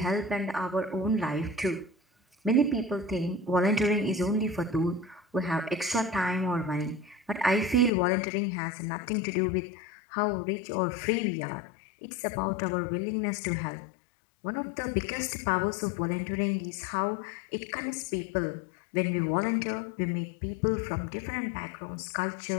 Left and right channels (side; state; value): right; drops out; at 7.9 s